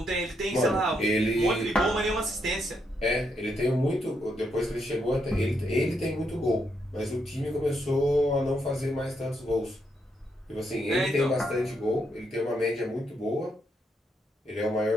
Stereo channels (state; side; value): normal; both; correlation 0.78